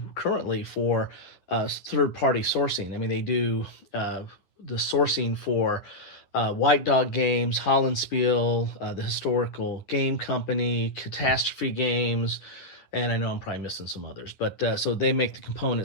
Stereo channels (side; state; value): right; late; 10 ms